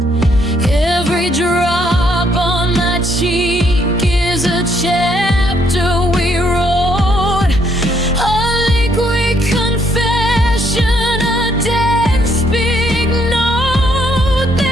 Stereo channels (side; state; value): both; normal; correlation 0.70